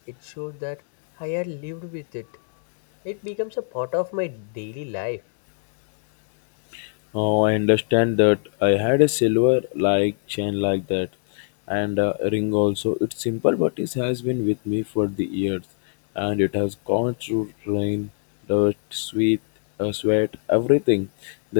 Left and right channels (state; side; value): silent; right; digital silence